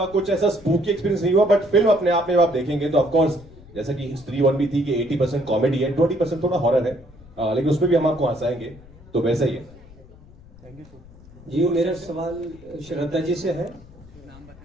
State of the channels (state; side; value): noise; left; rumble, 22 dB below the sound